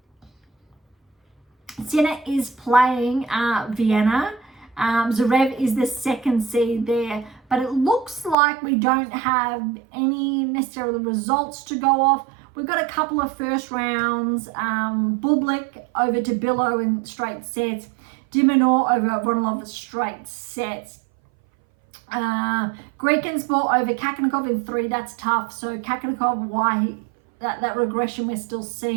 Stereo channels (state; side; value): drops out; left; at 8.3 s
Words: Sinner is playing Vienna. Zverev is the second seed there, but it looks like we don't have any necessarily results to go off. We've got a couple of first rounds. Bublik over to Billow in straight sets. Dimonor over Ronalov straight sets. Grekensport over Kakanakov in 3. That's tough. So Kakanakov, that regression we're still